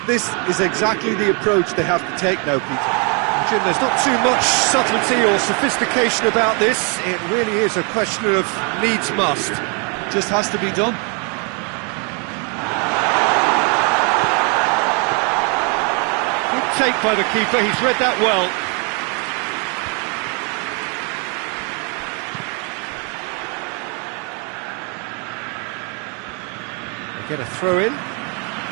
this is exactly the approach they have to take now, Peter. Jim, there's not too much subtlety or sophistication about this. It really is a question of needs must. Just has to be done. Good take by the keeper, he's read that well. They get a throw in.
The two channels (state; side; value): quieter; left; 35.7 dB